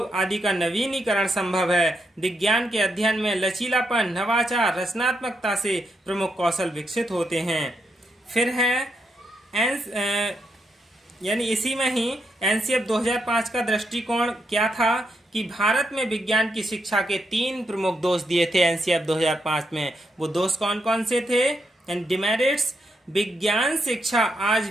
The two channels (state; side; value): normal; both; correlation 0.80